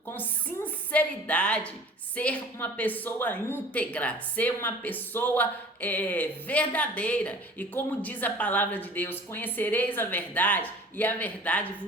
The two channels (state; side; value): normal; both; correlation 0.45